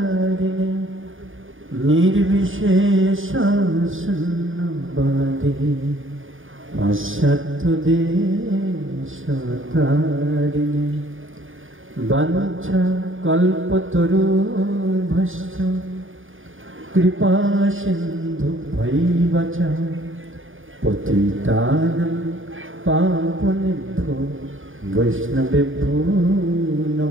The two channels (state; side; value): late; left; 0.58 ms